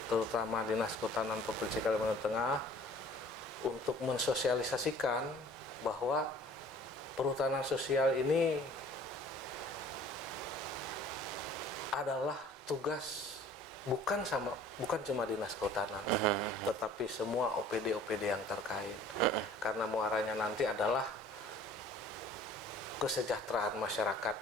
terutama Dinas Kehutanan Provinsi Kalimantan Tengah, untuk mensosialisasikan bahwa perhutanan sosial ini adalah tugas bukan cuma Dinas Kehutanan, tetapi semua OPD-OPD yang terkait. Karena muaranya nanti adalah kesejahteraan masyarakat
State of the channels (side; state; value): both; normal; correlation 0.50